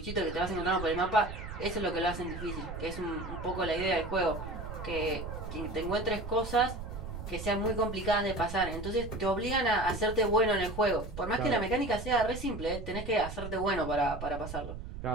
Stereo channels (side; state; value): right; noise; rumble, 9 dB below the sound